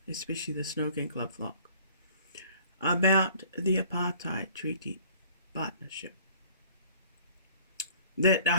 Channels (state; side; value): inverted; both; correlation -0.53